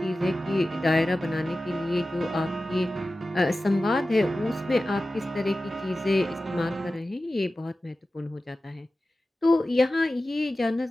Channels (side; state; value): both; normal; correlation 0.95